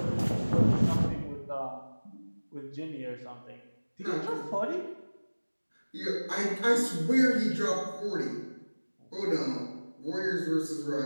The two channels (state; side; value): inverted; both; correlation -1.00